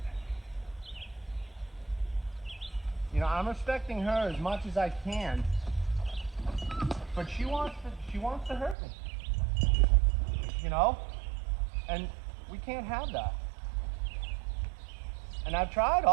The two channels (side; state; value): left; drops out; at 8.8 s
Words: you know, I'm respecting her as much as I can, but she wants to hurt me. You know? And we can't have that. And I've tried